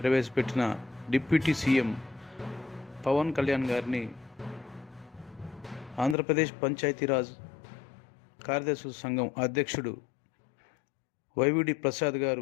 ప్రవేశపెట్టిన డిప్యూటీ సీఎం పవన్ కళ్యాణ్ గారిని ఆంధ్రప్రదేశ్ పంచాయతీరాజ్ కార్యదర్శుల సంఘం అధ్యక్షుడు వైవిడి ప్రసాద్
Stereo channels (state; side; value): drops out; right; at 6.2 s